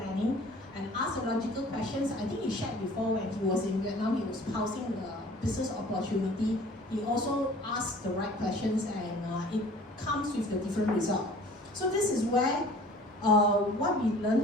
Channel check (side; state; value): both; normal; correlation 0.48